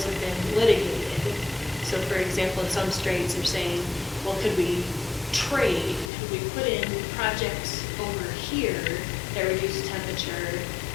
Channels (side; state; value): right; drops out; at 6.1 s